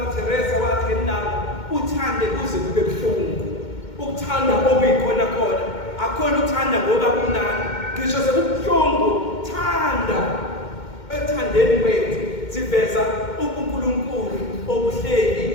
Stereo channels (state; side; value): late; right; 2.2 ms